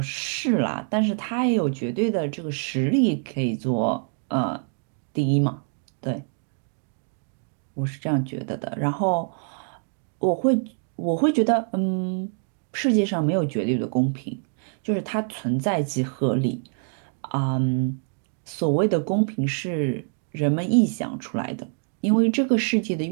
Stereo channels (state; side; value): silent; left; 57 dB below the other